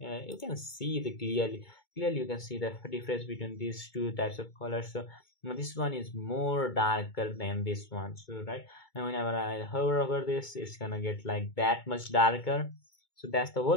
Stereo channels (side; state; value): right; late; 2.2 ms